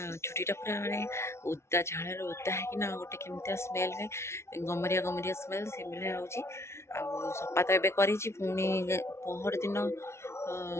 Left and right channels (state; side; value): late; right; 0.13 ms